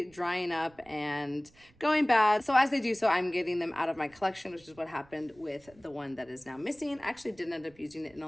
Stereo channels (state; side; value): noise; right; rumble, 28 dB below the sound